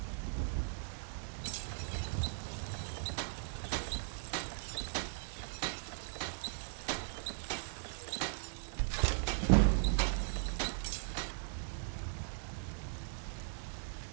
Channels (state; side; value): silent; left; 52 dB below the other